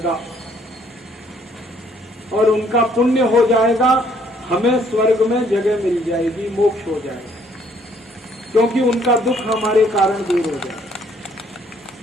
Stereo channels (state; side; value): normal; both; correlation 0.64